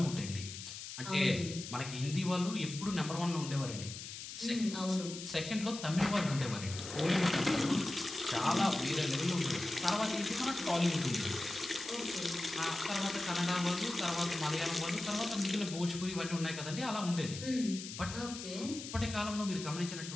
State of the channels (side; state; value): left; noise; hiss, 9 dB below the sound